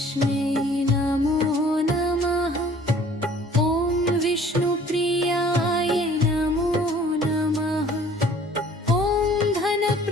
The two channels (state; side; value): normal; both; correlation 0.53